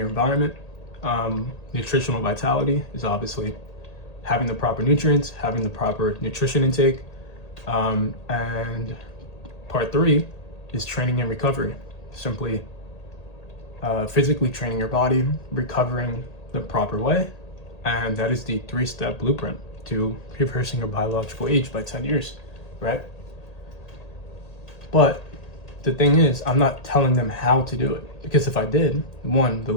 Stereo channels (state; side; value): late; right; 1.8 ms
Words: environment. Nutritional vitality is obviously having the proper nutrients, having the proper nutrition intake. And part 3 is training and recovery. Simply physically training your body, recovering the proper way. And that is the 3-step blueprint to reversing your biological age by 10 years, right? But the thing is, I'm not telling them how to do it, because if I did, 1, the